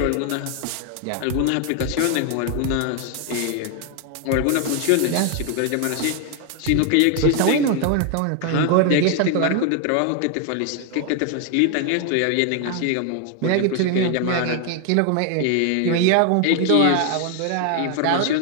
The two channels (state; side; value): different; both; correlation 0.01